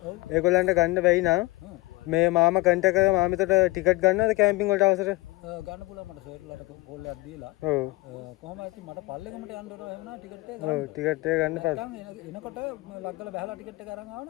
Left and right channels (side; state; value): right; quieter; 22.4 dB